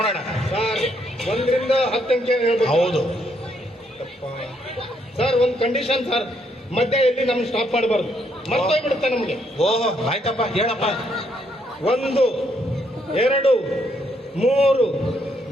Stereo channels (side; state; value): both; normal; correlation 0.73